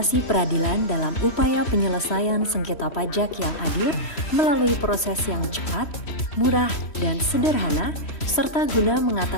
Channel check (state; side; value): late; right; 3.1 ms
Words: peradilan dalam upaya penyelesaian sengketa pajak yang adil melalui proses yang cepat, murah, dan sederhana, serta guna